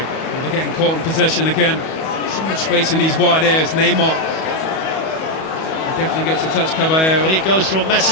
Well, they're getting caught in possession again. So much space in these wide areas. Neymar definitely gets a touch, Caballero. And it goes from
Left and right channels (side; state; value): right; late; 31 ms